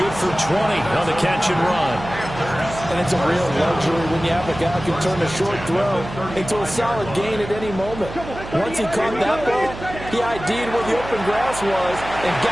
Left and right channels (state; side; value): noise; right; hum, 12 dB below the sound